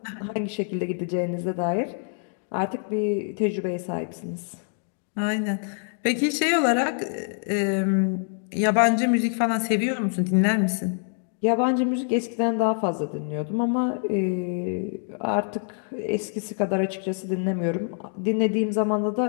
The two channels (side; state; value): right; silent; 61 dB below the other